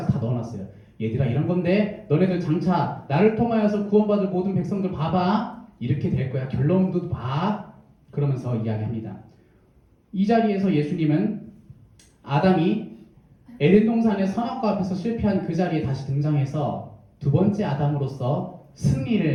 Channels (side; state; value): both; identical; correlation 1.00